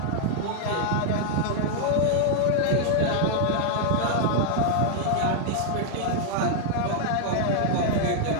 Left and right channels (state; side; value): different; both; correlation 0.00